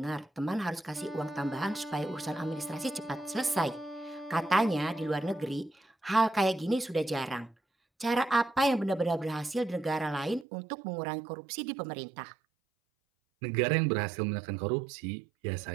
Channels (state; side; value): drops out; left; at 10.5 s